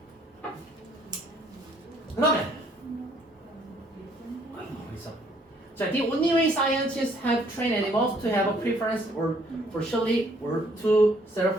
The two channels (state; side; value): normal; both; correlation 0.64